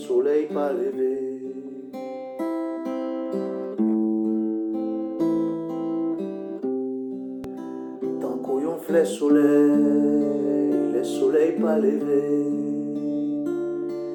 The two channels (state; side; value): identical; both; correlation 1.00